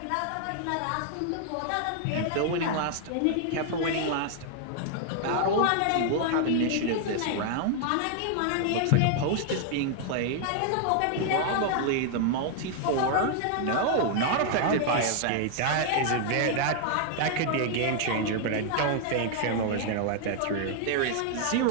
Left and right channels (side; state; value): both; different; correlation 0.00